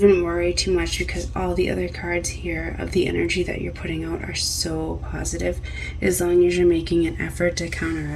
worry too much, because all the other cards here of the energy that you're putting out are so positive. As long as you're making an effort to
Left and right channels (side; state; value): both; identical; correlation 1.00